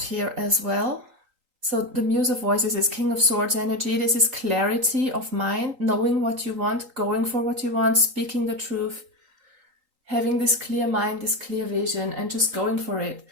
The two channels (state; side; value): late; left; 3.8 ms